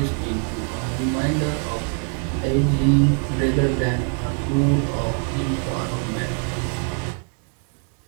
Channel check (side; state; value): left; quieter; 39.8 dB